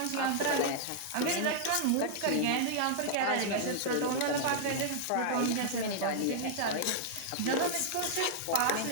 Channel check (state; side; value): different; both; correlation -0.01